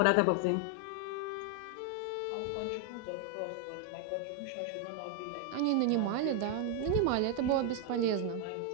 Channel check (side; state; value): both; different; correlation 0.01